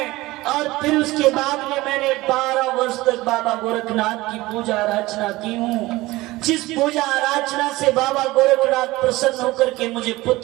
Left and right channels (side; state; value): left; quieter; 19.3 dB